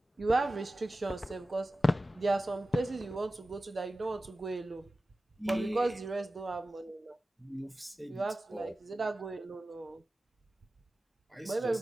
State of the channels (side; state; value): both; normal; correlation 0.95